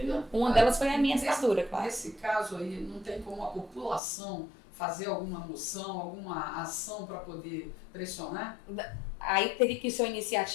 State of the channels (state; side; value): drops out; right; at 4.0 s